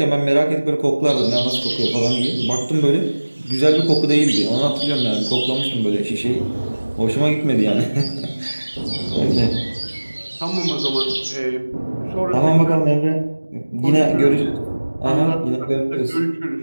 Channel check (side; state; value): both; inverted; correlation -1.00